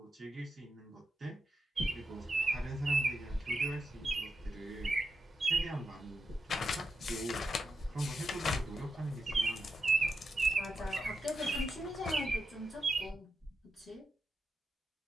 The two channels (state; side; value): normal; both; correlation 0.86